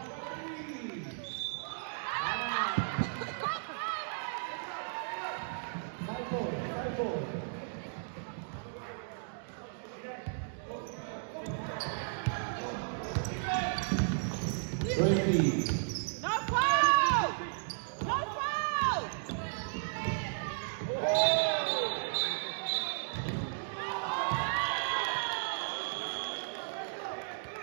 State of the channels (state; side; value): silent; left; digital silence